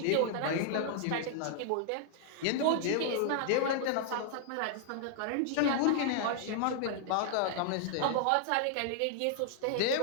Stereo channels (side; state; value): both; different; correlation -0.01